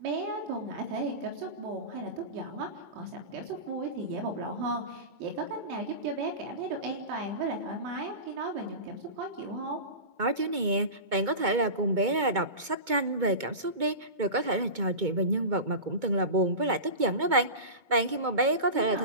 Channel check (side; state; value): left; late; 2.2 ms